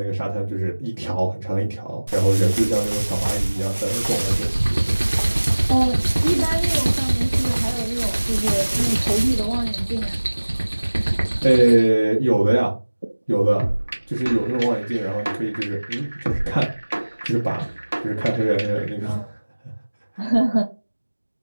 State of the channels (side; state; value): both; inverted; correlation -1.00